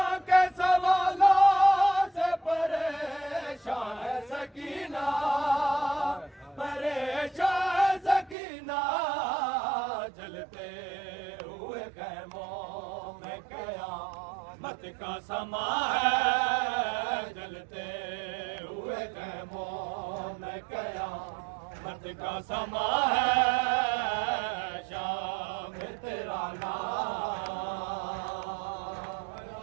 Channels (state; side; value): drops out; left; at 8.3 s